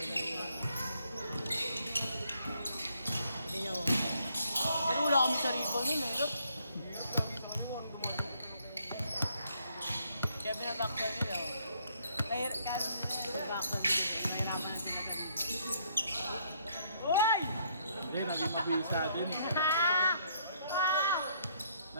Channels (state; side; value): inverted; both; correlation -0.68